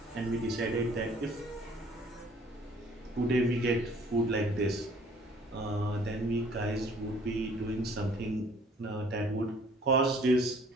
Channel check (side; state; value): both; normal; correlation 0.56